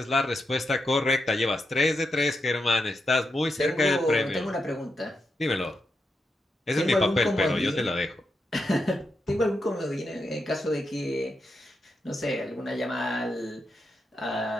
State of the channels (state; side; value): normal; both; correlation 0.84